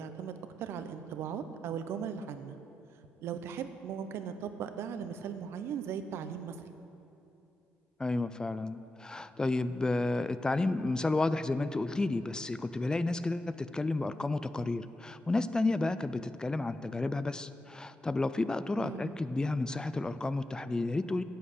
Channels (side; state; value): both; normal; correlation 0.89